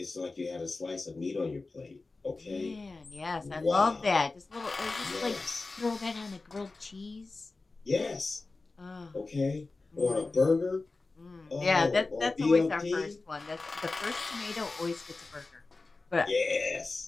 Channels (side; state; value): right; quieter; 3.6 dB